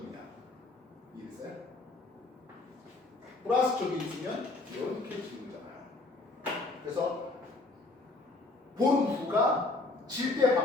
이해됐어요? 플러스 쪽에 있으면 이렇게 지는 거잖아요. 그래서 보름 후가 질 때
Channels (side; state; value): right; quieter; 3.2 dB